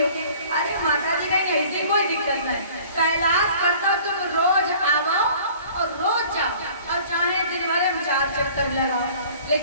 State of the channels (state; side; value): inverted; both; correlation -0.49